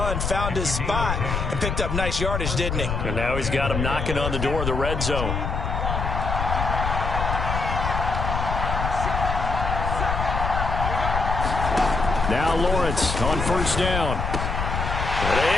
Found his spot and picked up nice yardage, didn't he? And now he's got him knocking on the door of the red zone. Now Lawrence on first down.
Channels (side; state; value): left; noise; rumble, 2 dB below the sound